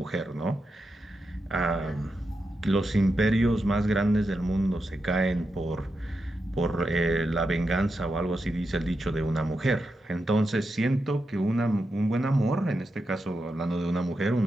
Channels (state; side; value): normal; both; correlation 0.87